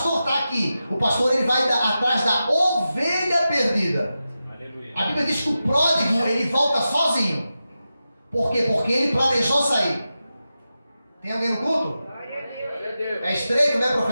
está aqui? O pastor, ele vai atrás da ovelha perdida. Aleluia. A Bíblia diz que o pródigo, ele volta sozinho. Por quê? Porque ele planejou sair. Tem alguém no culto? Glória a Deus. É estreito, né,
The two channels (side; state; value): both; inverted; correlation -0.91